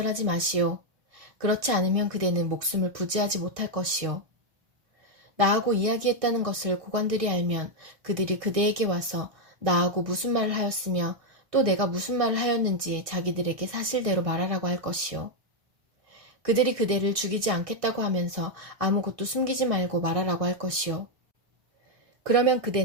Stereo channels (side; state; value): left; late; 1.6 ms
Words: 마시오. 그렇지 않으면 그대는 목숨을 부지하지 못할 것이오. 나하고 이야기했다는 것을 고관들이 알면 그들이 그대에게 와서 나하고 무슨 말을 하였으며 또 내가 무슨 말을 하였는지 자기들에게 사실대로 말하라고 할 것이오. 그들이 그대를 죽이지 않겠다고 하면서 아무것도 숨기지 말고 말하라고 할 것이오. 그러면